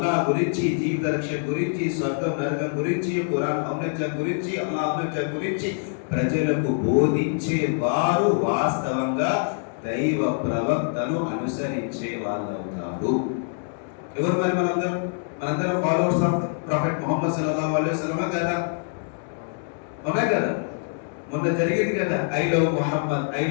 గురించి, జీవిత రక్షణ గురించి, స్వర్గం నరకం గురించి, ఖురాన్ ఔన్నత్యం గురించి, అల్లాహ్ ఔన్నత్యం గురించి ప్రజలకు బోధించే వారు వాస్తవంగా దైవ ప్రవక్తను అనుసరించే వాళ్ళు అవుతారు. ఎవరు మరి మనందరం ఫాలోవర్స్ ఆఫ్ ప్రొఫెట్ ముహమ్మద్ సల్లల్లాహు అలైహి వసల్లం కదా? అవునా కదా? మొన్న జరిగింది కదా ఐ లవ్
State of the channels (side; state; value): right; silent; 62 dB below the other